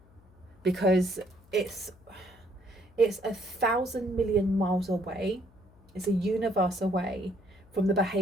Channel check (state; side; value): noise; left; hum, 28 dB below the sound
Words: Because it's 1,000 million miles away. It's a universe away from the